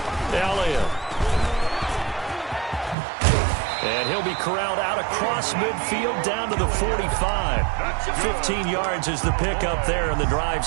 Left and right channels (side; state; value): left; drops out; at 3.0 s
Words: Elliott. And he'll be corralled out across midfield down to the 45. 15 yards is the pickup there, and the drive